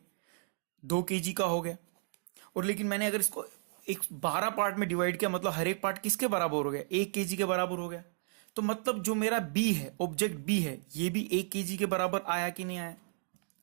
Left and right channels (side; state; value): left; silent; 55 dB below the other